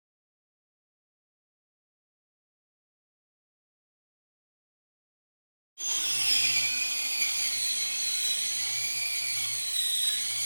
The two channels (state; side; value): inverted; both; correlation -1.00